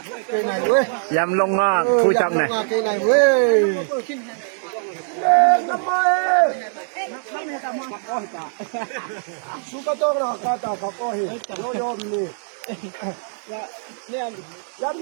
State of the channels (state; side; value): silent; left; digital silence